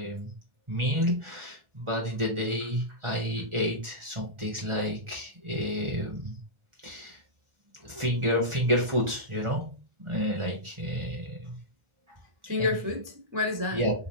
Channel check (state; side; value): late; left; 1.4 ms